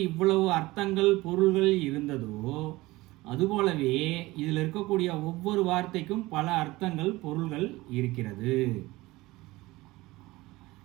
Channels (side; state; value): left; quieter; 19.9 dB